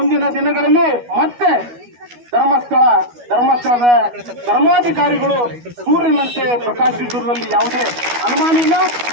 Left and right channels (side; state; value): left; late; 12 ms